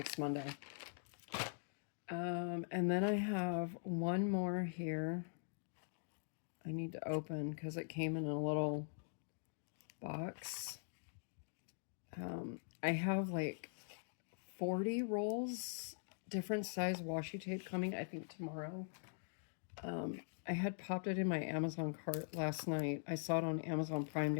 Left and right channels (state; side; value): silent; right; digital silence